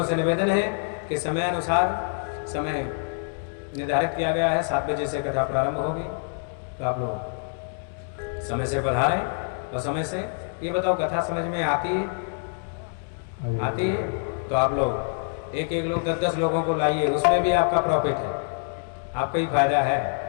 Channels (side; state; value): right; silent; 61 dB below the other